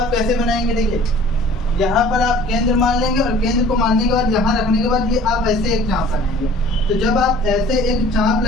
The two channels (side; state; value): both; normal; correlation 0.49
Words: कैसे बनाएंगे? देखिए, यहाँ पर आप केंद्र मान लेंगे और केंद्र को मानने के बाद यहाँ रखने के बाद ये आप ऐसे एक चाप लगाएंगे। तो जब आप ऐसे एक चाप